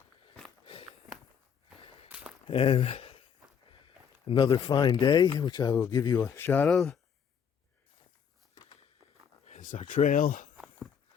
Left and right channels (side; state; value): right; quieter; 7.5 dB